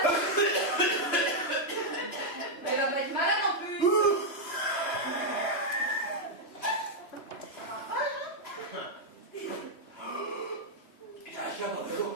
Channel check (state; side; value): late; right; 2.9 ms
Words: Il y a un chien dans le dos.